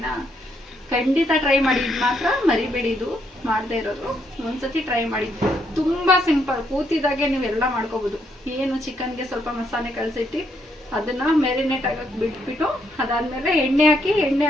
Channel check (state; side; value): normal; both; correlation 0.74